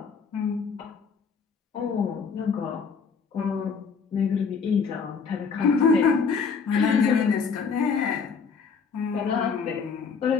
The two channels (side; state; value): right; quieter; 5.6 dB